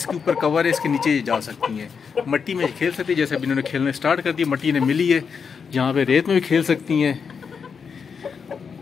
ऊपर कवर है, इसके नीचे जा सकती हैं, मट्टी में खेल सकती है। जैसे अभी इन्होंने खेलने स्टार्ट कर दी, मट्टी इन्हें मिली है, यहाँ पे रेत में भी खेल सकती हैं,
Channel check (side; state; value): right; quieter; 6.1 dB